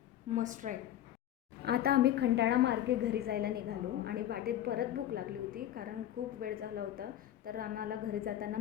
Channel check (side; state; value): right; quieter; 11.9 dB